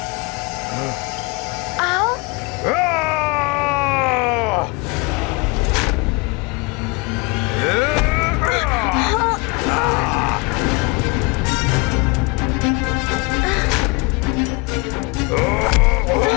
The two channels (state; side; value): quieter; right; 27.2 dB